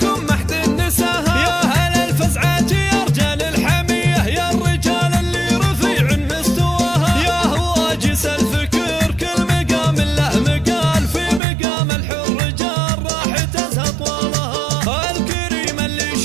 محد النساها يا هل الفزعات يا رجال الحميه يا الرجال اللي رفيع مستواها يا هواجس الفكر كل مقام له مقال في مقام الحر جار راح تزهى طوالها الكريم اللي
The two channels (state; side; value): drops out; left; at 11.4 s